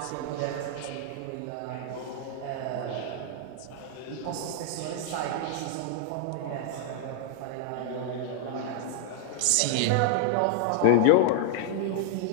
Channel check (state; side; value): different; both; correlation -0.01